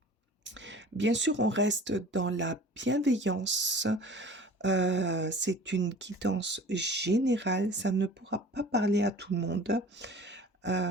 Bien sûr, on reste dans la bienveillance. C'est une guidance générale. Ça ne pourra pas parler à tout le monde.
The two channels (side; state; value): both; normal; correlation 0.43